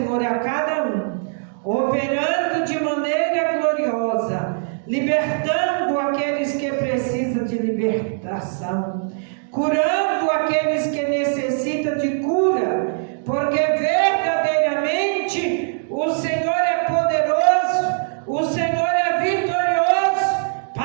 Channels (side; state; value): left; silent; digital silence